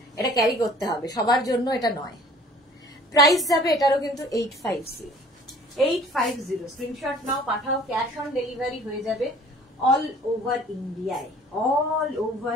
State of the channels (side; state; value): both; normal; correlation 0.51